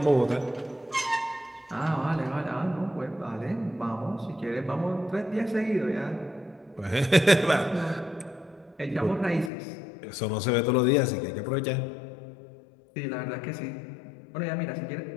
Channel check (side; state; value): right; drops out; at 9.5 s